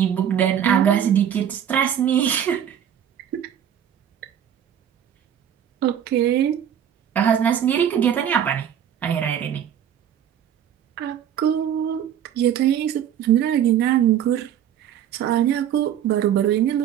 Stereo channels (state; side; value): quieter; left; 9.6 dB